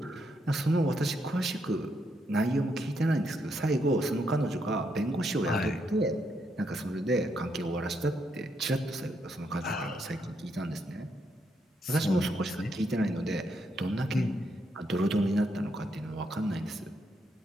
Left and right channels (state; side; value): normal; both; correlation 0.78